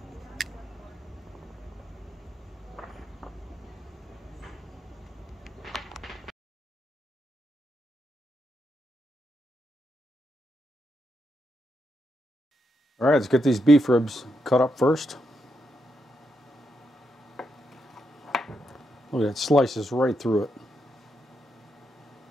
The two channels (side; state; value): both; normal; correlation 0.82